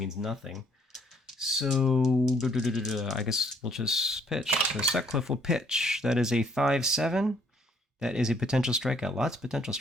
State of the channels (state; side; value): normal; both; correlation 0.64